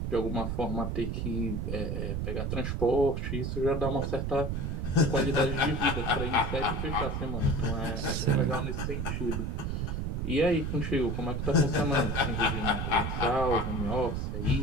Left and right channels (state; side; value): noise; right; rumble, 1 dB below the sound